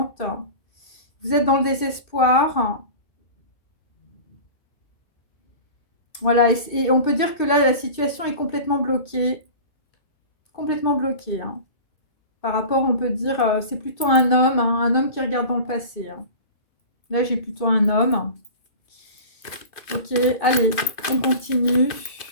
Vous êtes dans le désespoir. Voilà, et on peut dire que là, la situation est complètement bloquée. Complètement bloquée. Hein. Par rapport, on peut dire, c'est plutôt un homme, hein, un homme qui regarde dans le passé. Hein. Là, j'ai plutôt un homme. Ok, allez, on continue.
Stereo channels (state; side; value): late; right; 2.3 ms